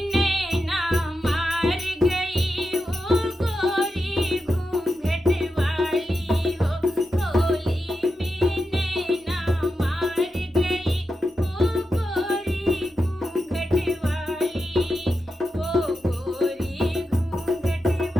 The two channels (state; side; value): normal; both; correlation 0.89